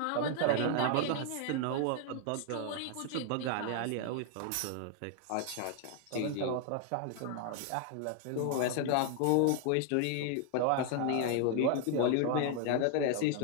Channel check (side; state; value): both; different; correlation 0.00